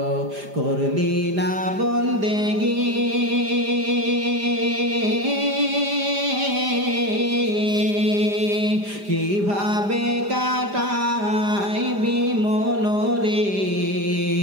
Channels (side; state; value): left; late; 5.0 ms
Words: করলি না বন্দেগি, কিভাবে কাটাইবি মনরে,